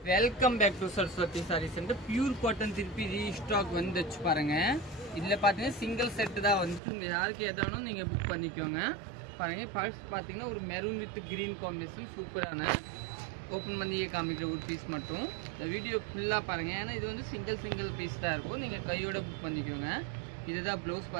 Welcome back to Saraswati sari centre. Pure cotton திருப்பி restock வந்துச்சு பாருங்க. இதில் பார்த்தீங்கன்னா சிங்கிள் செட்டு தான் வந்துச்சு. உங்கள் யாருக்கு எதானும் நீங்கள் புக் பண்ணிக்கோங்க. பாருங்கள், ஃபர்ஸ்ட் பார்த்தீங்கன்னா ஒரு மெரூன் வித் க்ரீன் காம்பினேஷன் சூப்பரான ஓப்பன் பண்ணியே காமிக்கிற ஒரு பீஸ் மட்டும். இந்த வீடியோ ஃபுல்லாக பாருங்கள். ஏன்னா இது வந்து சிங்கிள் பீஸ் தான் இருக்கும். நீங்கள் கையோட புக் பண்ணிக்கோங்க. இதுதான் ப்ளவுஸ்.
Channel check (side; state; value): left; drops out; at 6.8 s